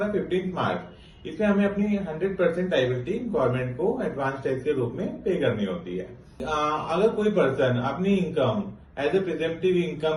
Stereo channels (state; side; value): identical; both; correlation 1.00